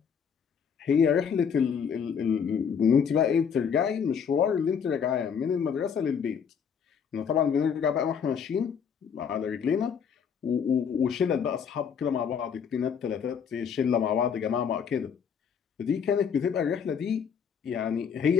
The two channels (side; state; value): right; quieter; 7.1 dB